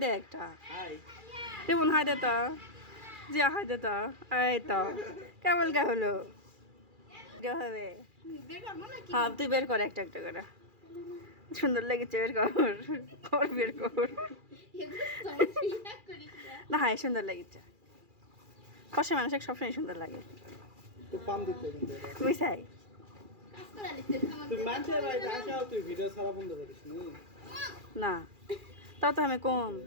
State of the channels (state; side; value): late; left; 2.4 ms